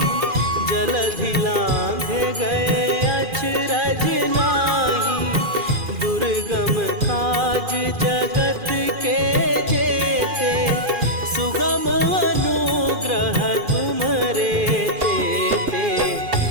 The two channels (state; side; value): late; left; 2.4 ms